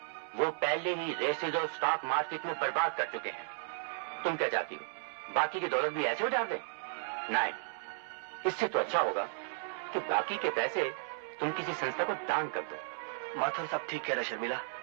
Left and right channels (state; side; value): silent; left; digital silence